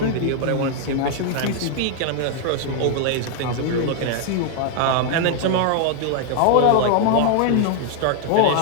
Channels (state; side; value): different; both; correlation 0.00